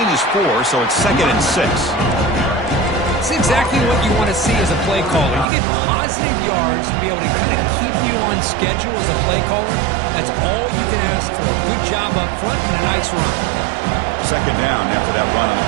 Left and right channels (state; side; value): drops out; left; at 5.5 s